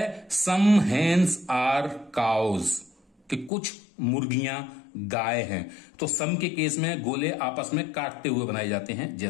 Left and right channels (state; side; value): drops out; right; at 3.5 s